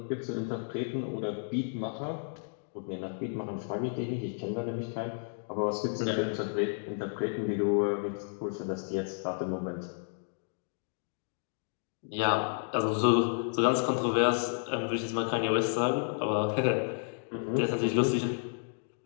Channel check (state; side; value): silent; right; digital silence